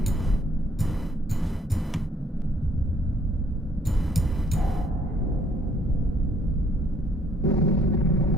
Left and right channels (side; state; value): both; normal; correlation 0.64